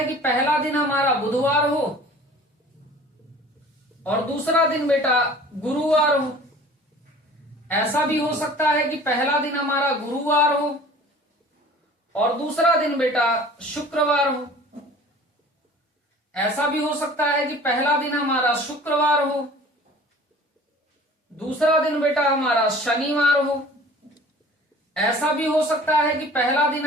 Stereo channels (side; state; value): both; normal; correlation 0.46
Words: कि पहला दिन हमारा बुधवार हो और दूसरा दिन बेटा गुरुवार हो। ऐसा भी हो सकता है कि पहला दिन हमारा गुरुवार हो और दूसरा दिन बेटा शुक्रवार हो। ऐसा भी हो सकता है कि पहला दिन हमारा शुक्रवार हो, दूसरा दिन बेटा हमारा शनिवार हो। ऐसा भी हो सकता है कि पहला दिन